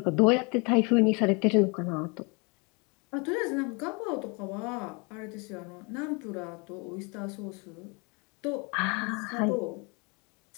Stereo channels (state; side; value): quieter; right; 31.0 dB